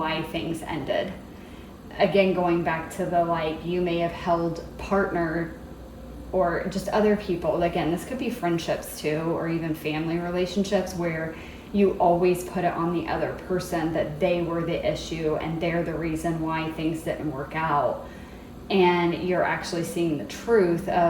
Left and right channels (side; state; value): both; identical; correlation 1.00